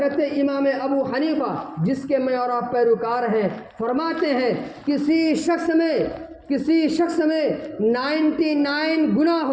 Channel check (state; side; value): identical; both; correlation 1.00